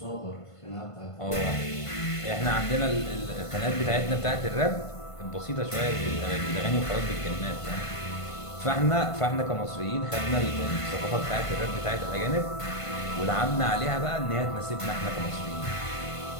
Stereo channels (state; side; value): late; right; 1.5 ms